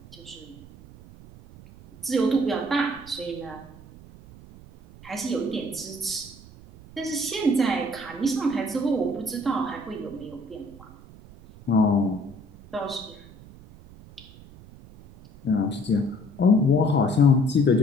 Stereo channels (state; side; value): noise; right; rumble, 20 dB below the sound